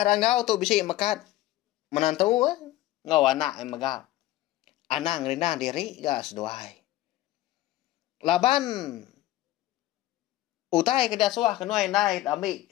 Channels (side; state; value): right; quieter; 15.4 dB